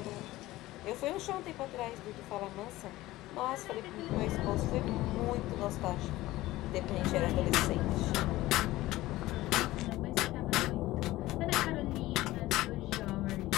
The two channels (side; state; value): right; quieter; 17.3 dB